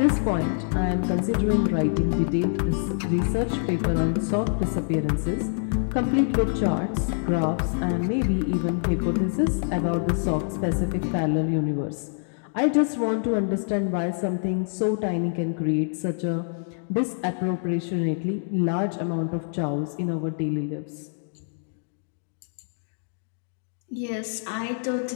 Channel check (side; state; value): right; silent; digital silence